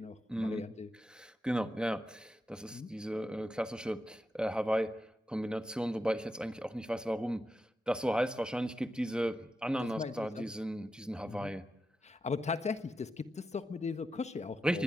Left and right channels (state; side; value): normal; both; correlation 0.88